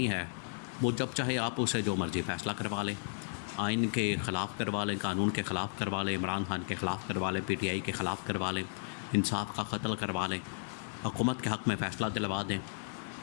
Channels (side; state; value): right; silent; digital silence